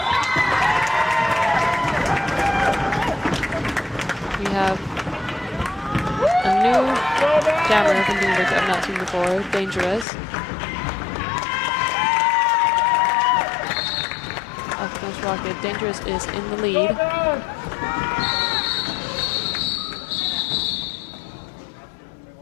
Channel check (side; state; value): right; drops out; at 10.1 s